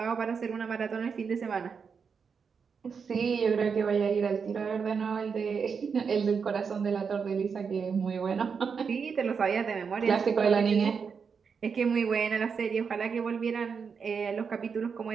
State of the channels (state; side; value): quieter; left; 6.0 dB